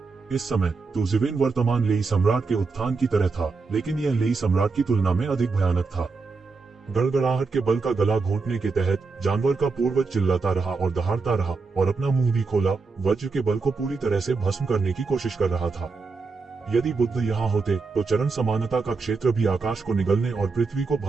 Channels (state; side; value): quieter; left; 4.3 dB